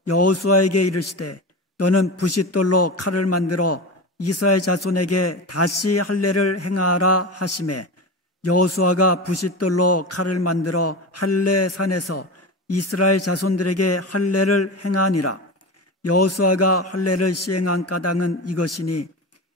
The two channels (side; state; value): both; normal; correlation 0.25